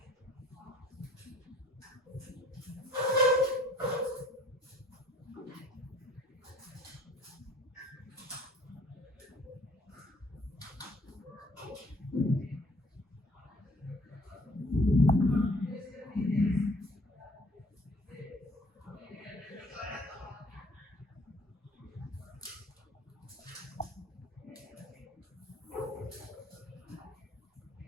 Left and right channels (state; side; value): normal; both; correlation 0.57